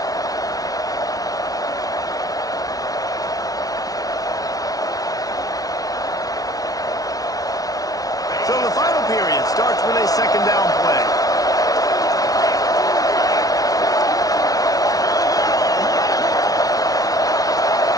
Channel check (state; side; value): late; right; 0.18 ms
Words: So the final period starts with a second down play.